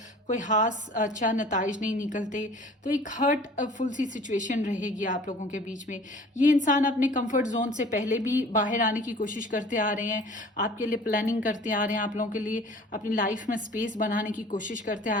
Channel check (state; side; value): normal; both; correlation 0.47